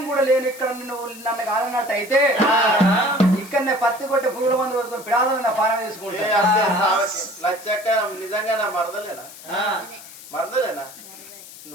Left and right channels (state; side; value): noise; left; hiss, 17 dB below the sound